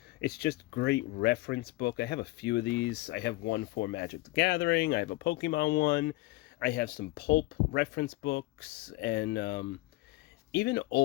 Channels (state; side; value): quieter; right; 20.2 dB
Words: it's just great reference book. I have a few of these. I have one for Magic the Gathering. I have a Pokemon one. I have some pulp reference books, and even